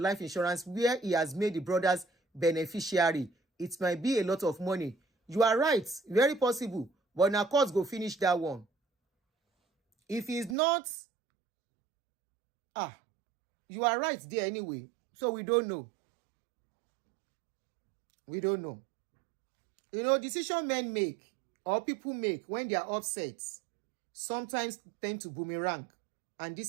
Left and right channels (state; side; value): drops out; left; at 10.6 s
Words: insurance where he has made the brothers beneficiary. It might be a lot of money. You are right. Very possible. But now courts go finish that one. If he's not, you are right there anyway. So we don't know. We don't know. You know, decision men make or people make when they are upset sometimes tend to boomerang. And